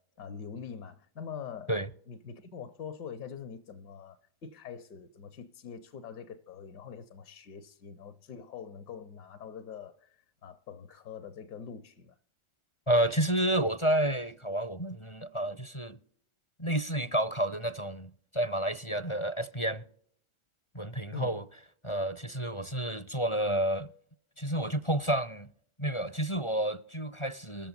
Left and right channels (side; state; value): right; late; 1.4 ms